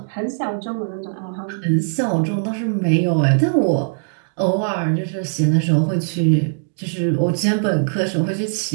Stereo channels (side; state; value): left; silent; digital silence